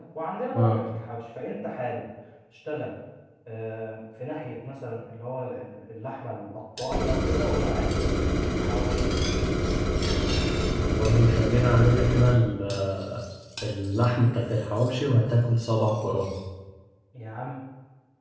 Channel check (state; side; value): identical; both; correlation 1.00